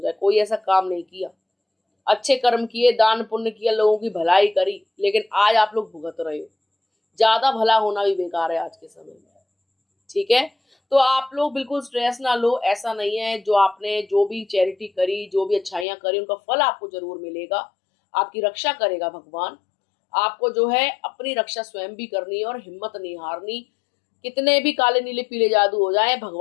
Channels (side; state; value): right; drops out; at 15.9 s